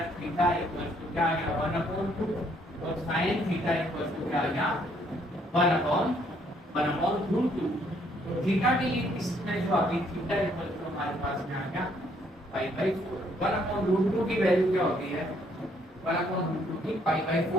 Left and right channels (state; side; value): normal; both; correlation 0.67